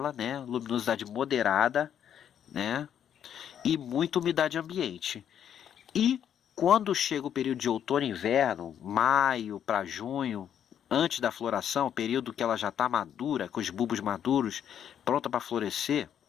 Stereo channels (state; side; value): quieter; right; 9.3 dB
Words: né? Luminosidade moderada, né? E muita umidade ambiente. E quando chega o período de outono e inverno, maio para junho, antes da floração, período que ela já está madura, com os bulbos maduros, pronta para florescer,